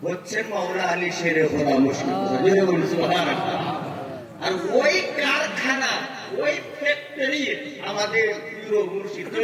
হচ্ছে মাওলা আলী শেরে খোদা মুশকিল কুশা। আর ওই কারখানা, ওই ফ্যাক্টরি আমাদের প্রিয় মুর্শিদ।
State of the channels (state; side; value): identical; both; correlation 1.00